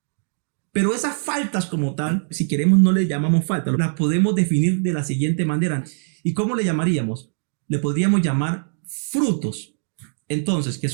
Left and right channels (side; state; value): left; silent; digital silence